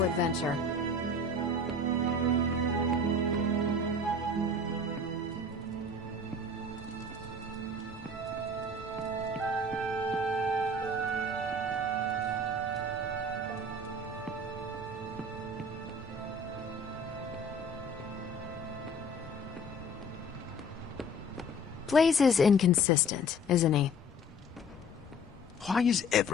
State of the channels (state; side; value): normal; both; correlation 0.45